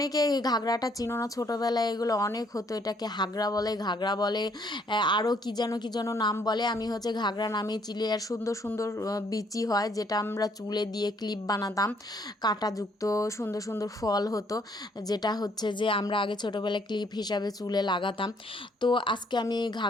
এই ঘাগরাটা চিনো না, ছোটোবেলায় এগুলো অনেক হতো, এটাকে হাগরা বলে, ঘাগরা বলে, আরও কী যেন নাম বলে। আমি হচ্ছে ঘাগরা নামে চিলি। আর সুন্দর সুন্দর বিচি হয়, যেটা আমরা চুলে দিয়ে ক্লিপ বানাতাম, কাঁটাযুক্ত সুন্দর সুন্দর ফল হতো, যেটা হচ্ছে যে আমরা আগে ছোটোবেলায় ক্লিপ হিসাবে চুলে লাগাতাম। তো আজকে আমি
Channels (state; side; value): normal; both; correlation 0.66